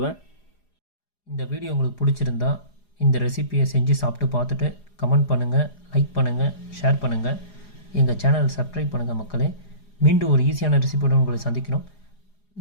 இந்த வீடியோ உங்களுக்கு பிடிச்சிருந்தா இந்த ரெசிபியை செஞ்சு சாப்பிட்டு பார்த்துட்டு கமெண்ட் பண்ணுங்கள், லைக் பண்ணுங்கள், ஷேர் பண்ணுங்கள். எங்கள் சேனலை சப்ஸ்கிரைப் பண்ணுங்கள் மக்களே. மீண்டும் ஒரு ஈஸியான ரெசிபியோடு உங்களை சந்திக்கிறோம்.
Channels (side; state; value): right; late; 4.9 ms